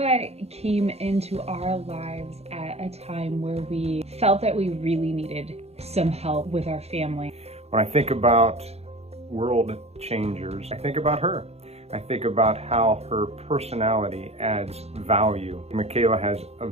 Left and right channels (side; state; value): left; late; 0.30 ms